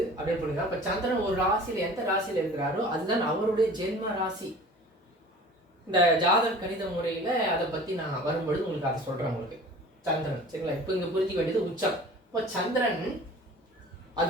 அப்படின்னு புரியுங்க. இப்ப சந்திரன் ஒரு ராசியில எந்த ராசியில இருக்கிறாரோ அதுதான் அவருடைய ஜென்ம ராசி. இந்த ஜாதக கணித முறையில அதை பத்தி நான் வரும்பொழுது உங்களுக்கு அதை சொல்றேன் உங்களுக்கு. சந்திரன், சரிங்களா, இப்ப இங்க புரிஞ்சுக்க வேண்டியது உச்சம். இப்போ சந்திரன் அது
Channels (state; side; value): normal; both; correlation 0.43